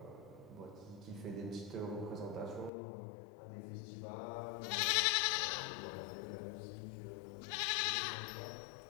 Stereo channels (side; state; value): right; drops out; at 2.7 s